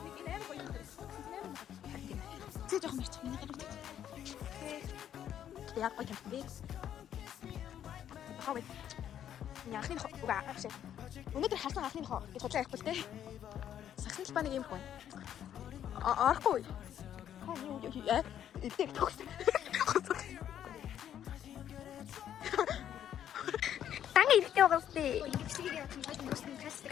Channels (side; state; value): right; quieter; 10.2 dB